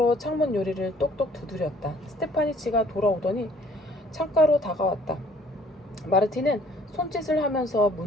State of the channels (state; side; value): normal; both; correlation 0.58